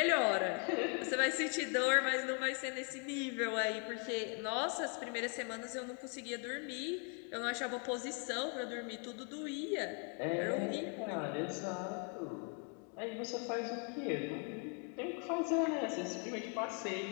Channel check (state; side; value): quieter; right; 39.4 dB